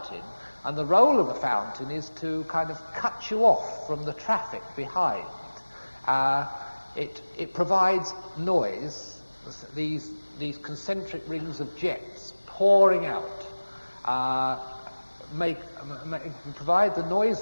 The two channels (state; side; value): inverted; both; correlation -1.00